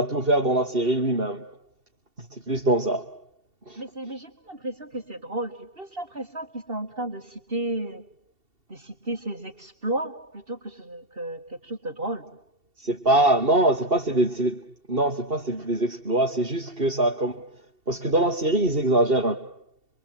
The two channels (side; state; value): left; late; 2.7 ms